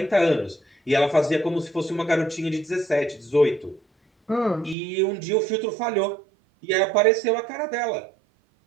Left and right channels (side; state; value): left; drops out; at 4.8 s